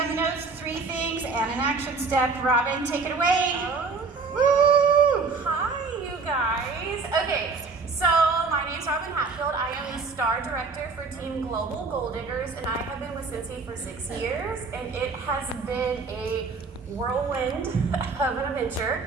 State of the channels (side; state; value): left; quieter; 4.4 dB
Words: the notes, 3 things, and an action step. Robin, take it away. Okay. Woo! Hi, you guys. Okay, so my name's Robin Hatfield. I am the Star Director for Team Global Gold Diggers, and I have been with Scentsy for 6 years, and it has been a whirlwind of an